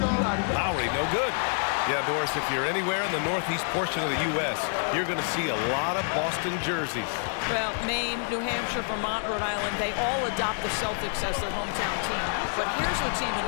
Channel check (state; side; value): silent; right; 55 dB below the other